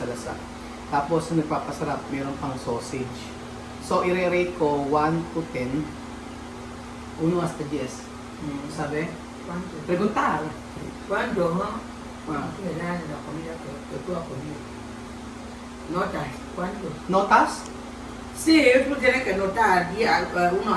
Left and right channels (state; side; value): identical; both; correlation 1.00